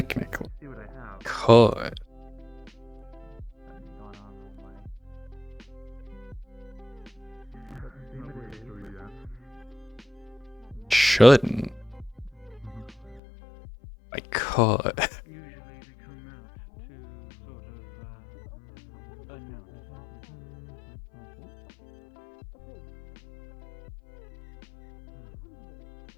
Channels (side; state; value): right; drops out; at 13.2 s